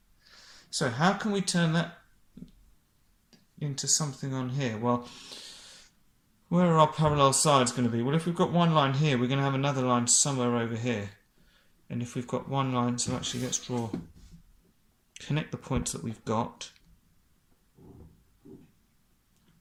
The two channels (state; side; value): identical; both; correlation 1.00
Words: So how can we turn that into something on here? Well, where are our parallel sides going to be? Well, if we've got one line here, we're going to have another line somewhere over here. And if we've got one line, so actually let's connect the points that we've got.